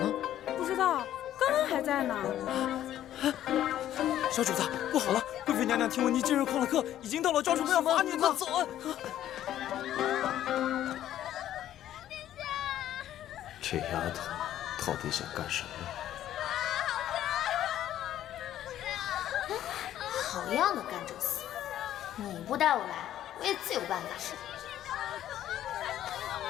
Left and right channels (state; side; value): quieter; right; 12.1 dB